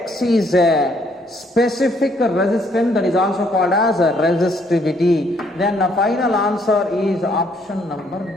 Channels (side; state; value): both; normal; correlation 0.67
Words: is a specific resistance, that is also called as resistivity. Then the final answer is option number